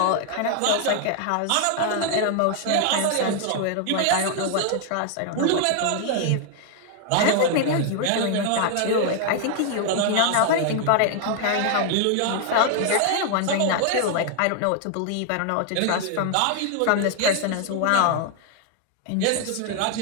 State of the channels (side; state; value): both; different; correlation 0.00